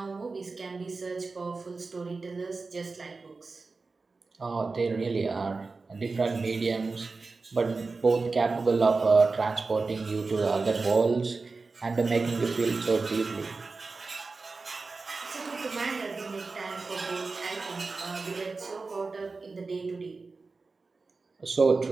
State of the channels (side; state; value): left; quieter; 4.0 dB